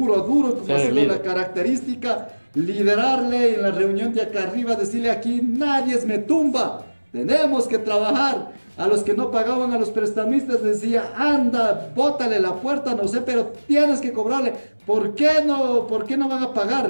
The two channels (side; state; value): both; inverted; correlation -1.00